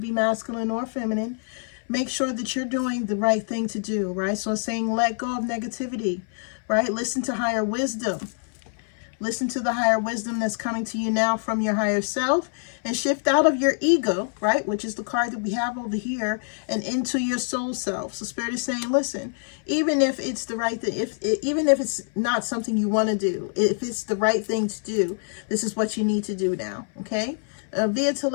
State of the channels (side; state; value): right; silent; 59 dB below the other